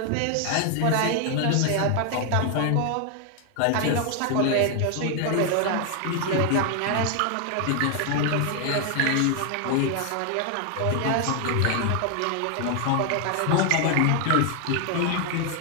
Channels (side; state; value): both; different; correlation 0.00